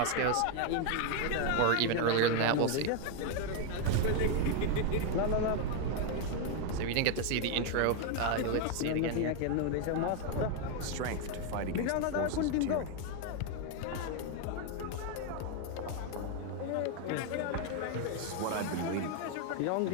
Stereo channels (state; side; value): different; both; correlation 0.01